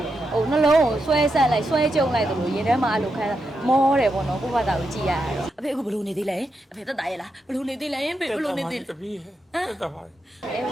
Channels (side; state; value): both; normal; correlation 0.85